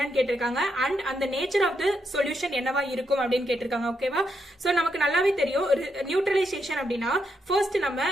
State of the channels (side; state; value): both; normal; correlation 0.80